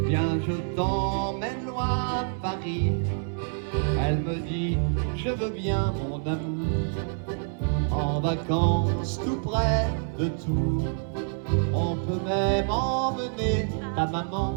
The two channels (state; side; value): silent; left; 60 dB below the other